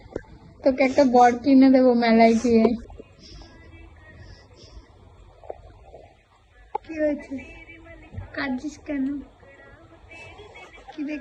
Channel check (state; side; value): identical; both; correlation 1.00